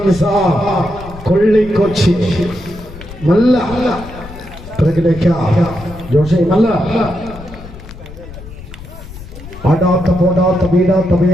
കൊള്ളിക്കൊച്ചി നല്ല ജോഷി നല്ല ആടാത്ത പോടാത്ത വീഴാത്ത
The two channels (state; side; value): noise; left; rumble, 15 dB below the sound